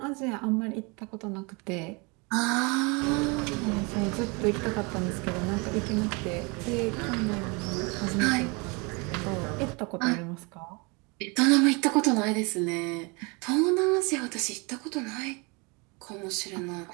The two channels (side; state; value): left; quieter; 29.5 dB